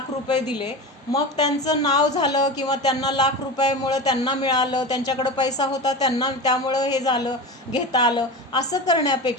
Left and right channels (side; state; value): both; normal; correlation 0.27